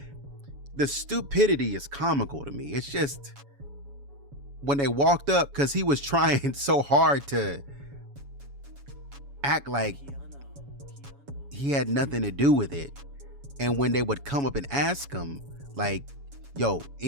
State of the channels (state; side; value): late; left; 7.1 ms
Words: The stupidity is comical to me. It's just when they walked up, because he was trying so hard to act like he had nothing to do with it. And when they would come up and ask him, like, yo,